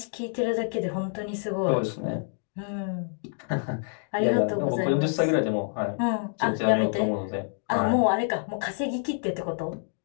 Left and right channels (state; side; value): silent; right; 60 dB below the other